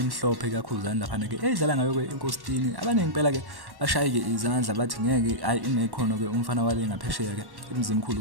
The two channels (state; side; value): late; left; 1.1 ms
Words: kakhudlana lapha ke edlala ngayo ke inkositini. Abaningi phela ke bashaye ke izandla bathi ngeke hayi inekhono ke umfana wale ngaphesheya ke